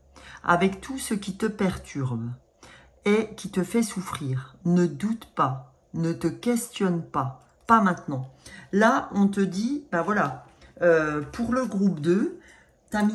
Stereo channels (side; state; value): both; identical; correlation 1.00